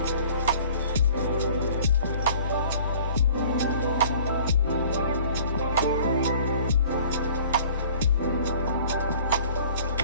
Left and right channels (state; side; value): inverted; both; correlation -0.50